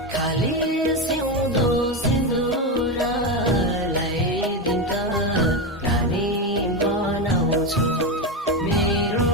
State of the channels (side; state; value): both; normal; correlation 0.13